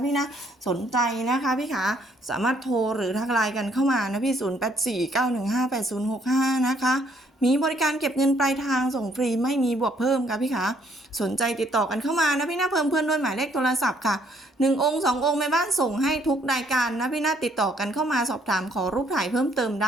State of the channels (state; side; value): normal; both; correlation 0.67